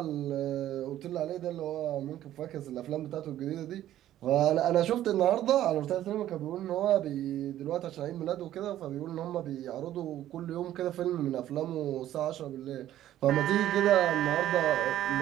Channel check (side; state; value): left; quieter; 12.7 dB